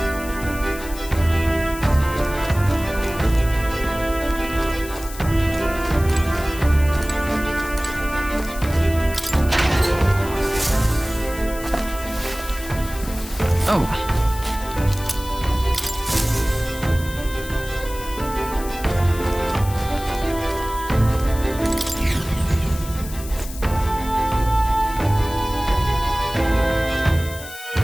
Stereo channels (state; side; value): noise; left; hiss, 14 dB below the sound